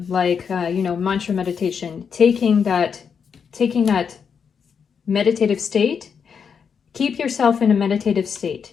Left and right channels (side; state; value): right; quieter; 6.6 dB